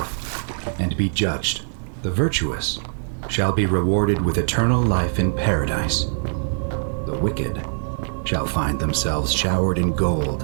and be judged. The virtuous shall be rewarded with eternal life in paradise. The wicked shall find themselves showered in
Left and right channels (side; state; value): left; silent; digital silence